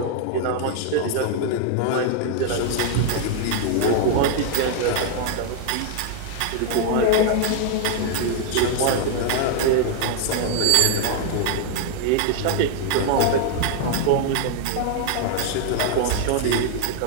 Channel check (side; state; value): both; different; correlation 0.00